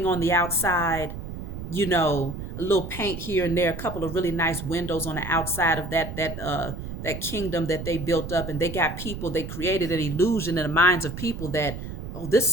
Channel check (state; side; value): noise; right; rumble, 8 dB below the sound